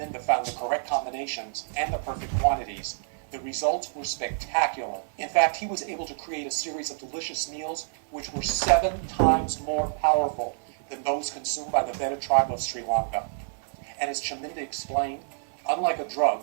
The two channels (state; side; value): silent; left; digital silence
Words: found the correct combinations and the perfect quantities, the results were spectacular. In fact, he was able to create a series of delicious meals which were 7 times more powerful than those consumed by the Beta tribe of Sri Lanka. And as Chaminda explained, unlike a drug,